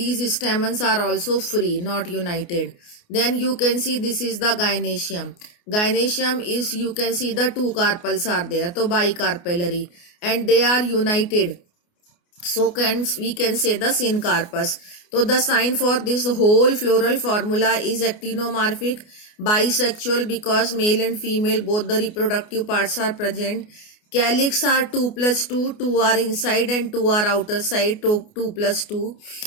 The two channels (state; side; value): late; right; 29 ms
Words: stamens are also free, not united. Then you can see this is the gynoecium. Gynoecium is, you can see the 2 carpels are there, so bicarpellary, and they are united. So we can say the syncarpus. So the sign for this whole floral formula is actinomorphic, bisexual because male and female both the reproductive parts are present. Calyx are 2 plus 2, 2 are inside and 2 are outer side, 2 plus 2.